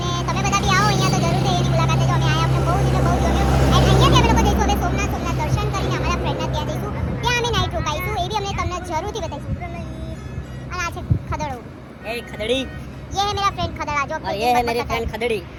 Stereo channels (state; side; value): identical; both; correlation 1.00